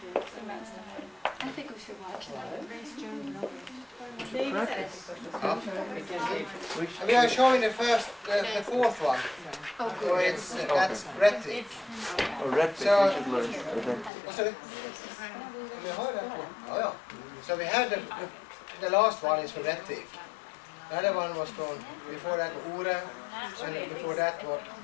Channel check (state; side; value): drops out; right; at 14.1 s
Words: I think we should watch that. we are showing the fourth one. So it's that's Reti. Red So- you should learn. What's it? Oh, yeah. So we had the last one is from Reti. The other one was from before that Ore, and before that was